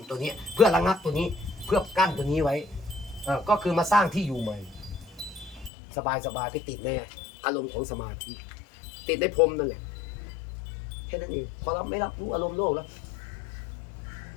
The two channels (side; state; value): right; drops out; at 5.7 s